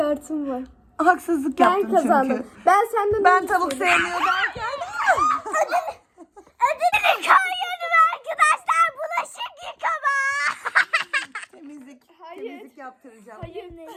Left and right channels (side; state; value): both; identical; correlation 1.00